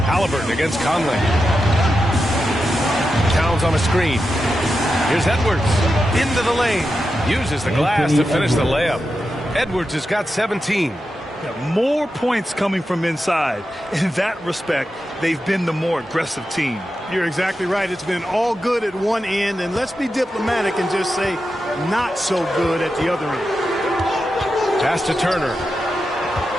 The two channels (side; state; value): both; normal; correlation 0.89